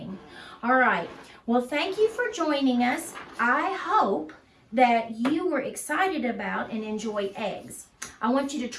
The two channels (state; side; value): identical; both; correlation 1.00